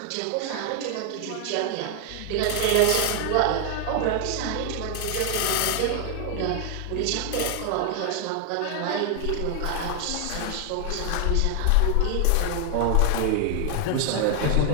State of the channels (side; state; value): both; different; correlation 0.00